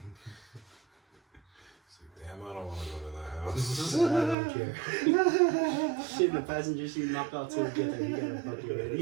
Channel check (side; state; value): left; drops out; at 4.4 s